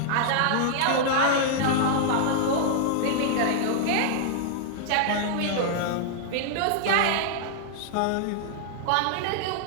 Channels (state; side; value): different; both; correlation -0.01